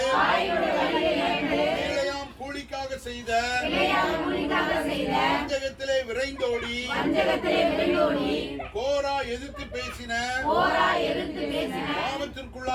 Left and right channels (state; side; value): identical; both; correlation 1.00